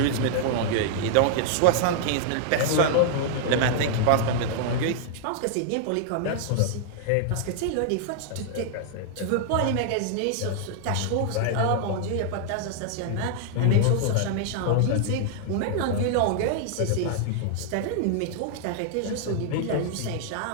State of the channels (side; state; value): both; different; correlation -0.01